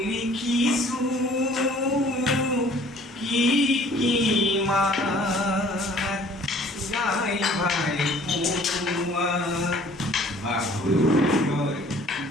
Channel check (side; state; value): both; normal; correlation 0.54